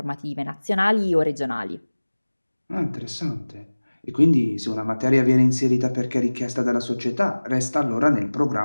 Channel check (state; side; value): inverted; both; correlation -1.00